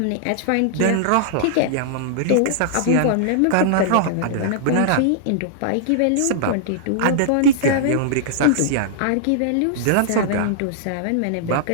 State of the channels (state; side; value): different; both; correlation -0.01